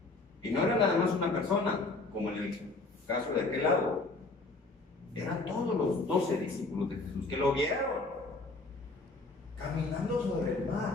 Y no era nada más una persona, como en el caso de aquel lado. Eran todos los 12 discípulos de Jesús que lo vieron caminando sobre el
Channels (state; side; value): quieter; right; 3.4 dB